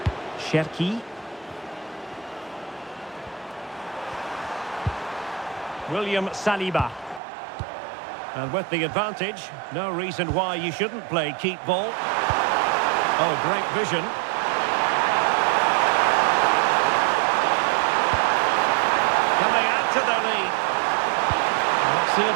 Cherki. William Saliba. And with the advantage, no reason why you shouldn't play keep ball. Oh, great vision. Can they add to their lead? Let's see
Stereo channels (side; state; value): left; drops out; at 7.2 s